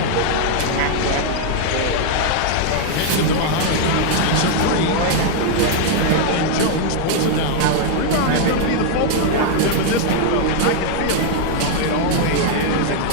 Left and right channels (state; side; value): different; both; correlation 0.00